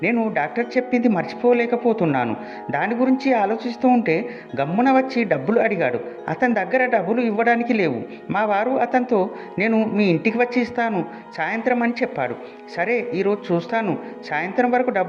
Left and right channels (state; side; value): identical; both; correlation 1.00